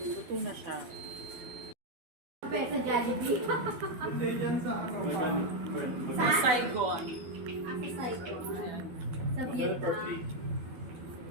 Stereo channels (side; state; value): left; late; 12 ms